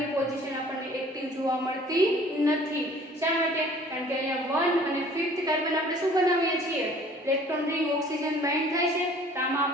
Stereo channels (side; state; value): both; normal; correlation 0.52